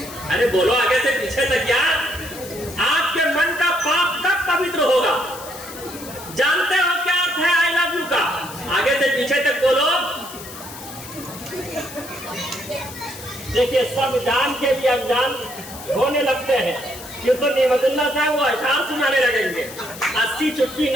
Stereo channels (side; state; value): left; noise; hiss, 14 dB below the sound